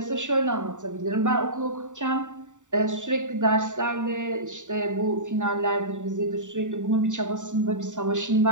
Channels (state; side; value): late; left; 0.86 ms